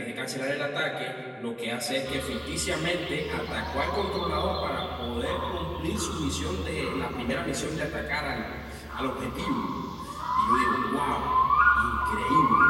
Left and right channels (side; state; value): both; identical; correlation 1.00